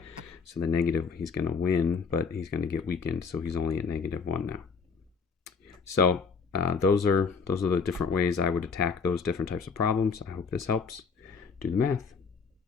So the negative, he's going to win, but he's going to get weakened. So he's only at -1 now. So those are the different ways I would attack those different types of problems. I hope this helps. Do the math.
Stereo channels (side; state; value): right; quieter; 5.3 dB